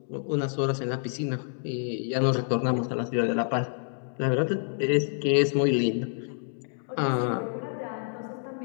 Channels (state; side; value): silent; right; digital silence